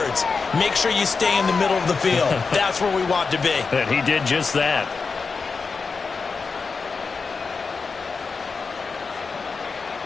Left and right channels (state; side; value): quieter; right; 4.8 dB